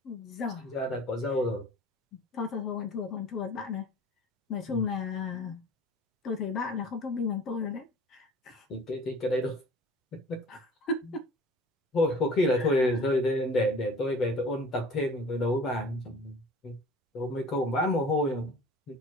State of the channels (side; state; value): both; normal; correlation 0.46